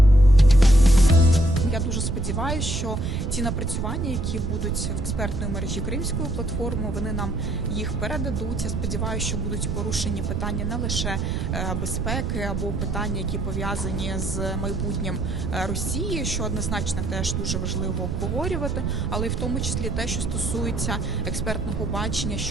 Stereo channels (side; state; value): right; noise; rumble, 3 dB below the sound